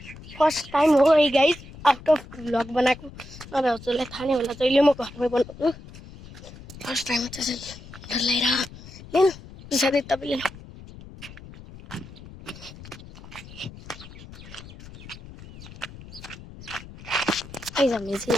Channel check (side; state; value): left; noise; rumble, 17 dB below the sound